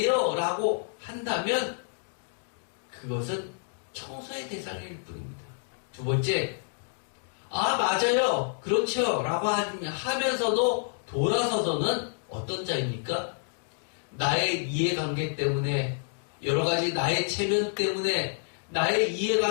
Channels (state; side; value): silent; right; digital silence